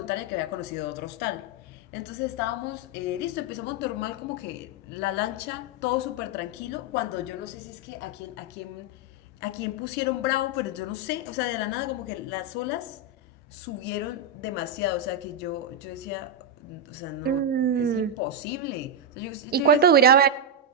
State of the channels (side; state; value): both; normal; correlation 0.01